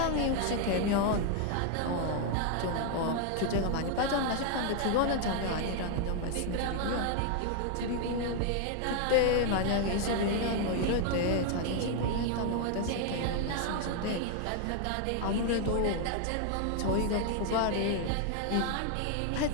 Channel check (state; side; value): different; both; correlation 0.00